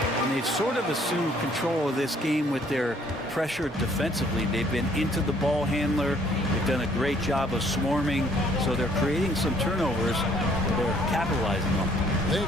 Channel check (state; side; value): normal; both; correlation 0.62